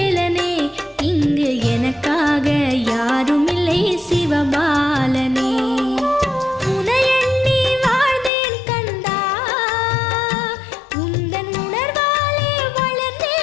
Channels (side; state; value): right; drops out; at 8.3 s